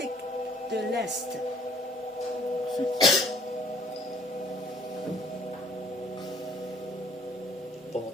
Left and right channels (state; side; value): normal; both; correlation 0.58